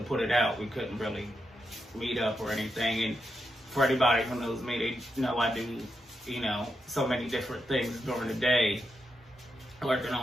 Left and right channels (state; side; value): normal; both; correlation 0.85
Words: put it out, we couldn't really meet up or anything. And for anybody who knows me, they know I do, you know, so many different things during the day, working